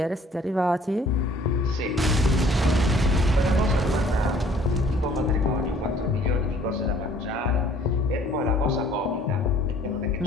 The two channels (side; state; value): both; normal; correlation 0.56